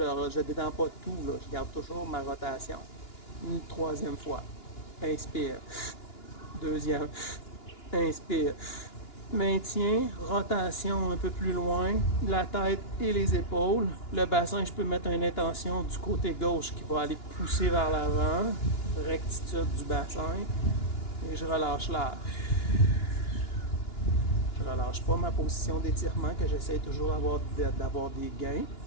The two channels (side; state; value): right; late; 2.9 ms